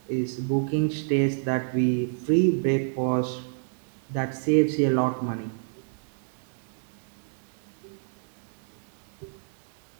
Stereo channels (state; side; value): silent; left; digital silence